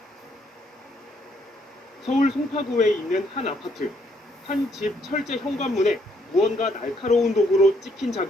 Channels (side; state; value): both; normal; correlation 0.70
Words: 서울 송파구에 있는 한 아파트. 한 집 철제 현관문에 무언가 날카로운 도구로 찍힌